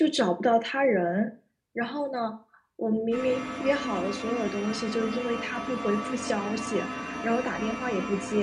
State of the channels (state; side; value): identical; both; correlation 1.00